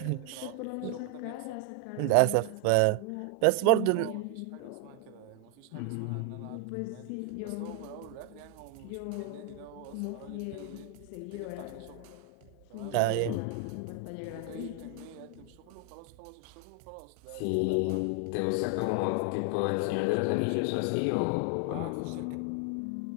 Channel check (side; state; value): both; different; correlation 0.00